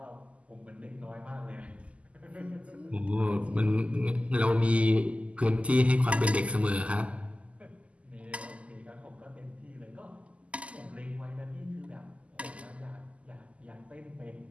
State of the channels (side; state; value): left; late; 0.063 ms